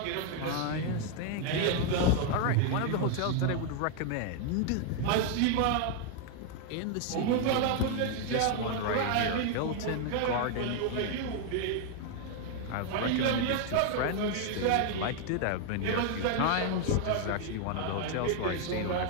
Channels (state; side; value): different; both; correlation 0.00